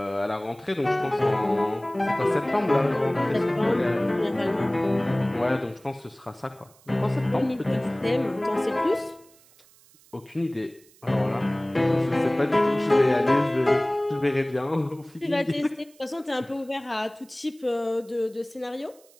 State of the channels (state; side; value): noise; right; hiss, 28 dB below the sound